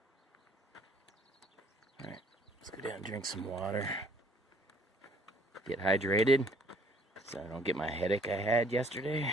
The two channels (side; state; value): both; normal; correlation 0.59